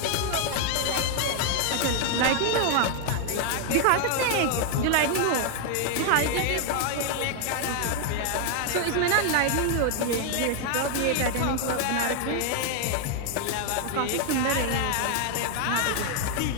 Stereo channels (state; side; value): different; both; correlation 0.00